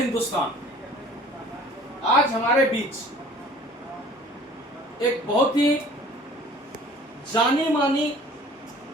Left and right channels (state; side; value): normal; both; correlation 0.50